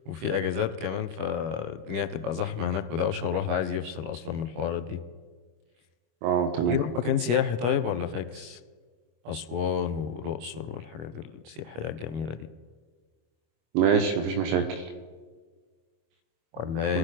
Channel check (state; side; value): late; left; 25 ms